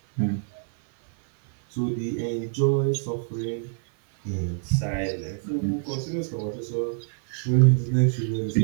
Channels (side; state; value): left; silent; 56 dB below the other